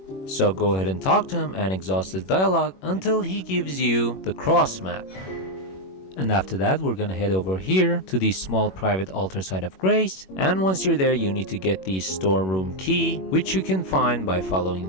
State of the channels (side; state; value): right; late; 21 ms